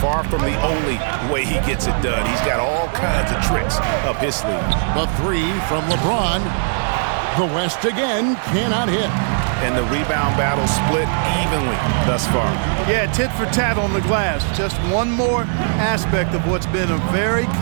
from the only way he gets it done. He's got all kinds of tricks up his sleeve. The three from LeBron. The West again cannot hit. And the rebound battle split evenly thus far. Yeah, tit for tat on the glass. Just one more aspect of what's been a very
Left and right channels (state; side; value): silent; left; digital silence